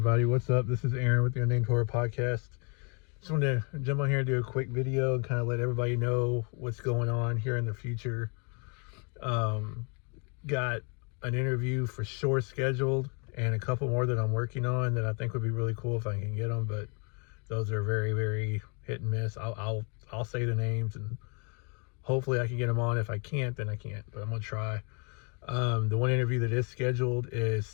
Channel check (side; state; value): right; quieter; 35.7 dB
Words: what's up? This is Aaron with the Unnamed Horror Podcast. Just wanted to jump on here and do a quick video and kind of let everybody know what's going on here in the future. Got an interview for sure scheduled and a couple more that I'm working on that I think would be really cool if I can get them, but those are very, very hit and miss. I'll say the names and hopefully I can get them on. If I can't, then I can't, but I'm gonna try. The one interview that is scheduled is